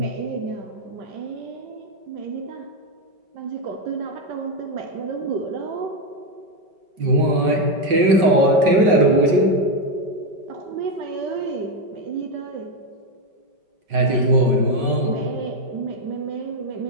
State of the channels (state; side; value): late; left; 5.4 ms